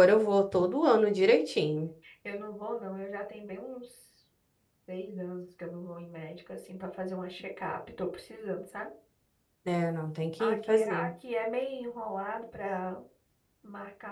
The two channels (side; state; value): both; identical; correlation 1.00